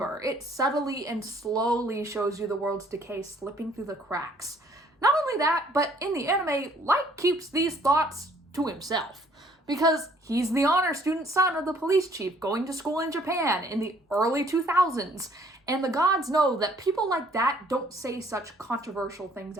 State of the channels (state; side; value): normal; both; correlation 0.61